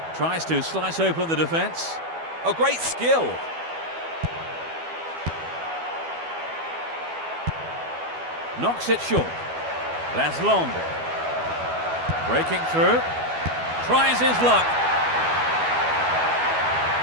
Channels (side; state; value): left; late; 12 ms